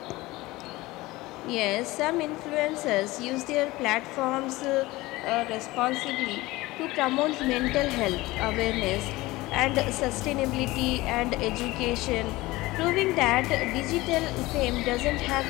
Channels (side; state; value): right; quieter; 19.8 dB